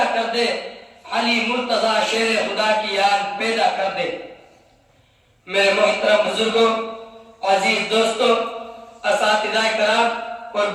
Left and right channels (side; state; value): both; identical; correlation 1.00